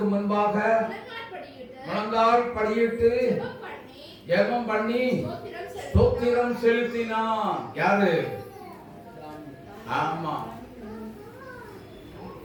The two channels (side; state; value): both; identical; correlation 1.00